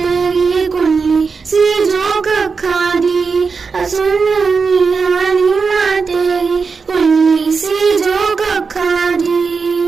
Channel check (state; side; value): quieter; left; 5.0 dB